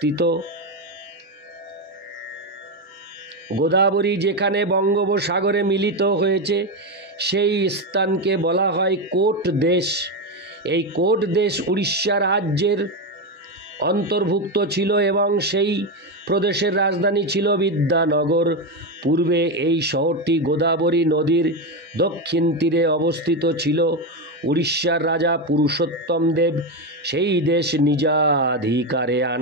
গোদাবরী যেখানে বঙ্গোপসাগরে মিলিত হয়েছে সেই স্থানকে বলা হয় কোট দেশ। এই কোট দেশ উড়িষ্যা রাজ্যের অন্তর্ভুক্ত ছিল এবং সেই প্রদেশের রাজধানী ছিল বিদ্যানগর। পূর্বে এই শহরটি গোদাবরী নদীর দক্ষিণ তীরে অবস্থিত ছিল। উড়িষ্যার রাজা পুরুষোত্তম দেব সেই দেশ নিজাধিকারে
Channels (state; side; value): normal; both; correlation 0.11